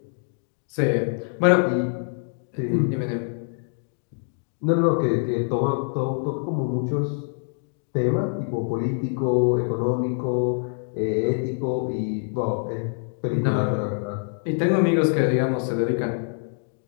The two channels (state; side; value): silent; right; 62 dB below the other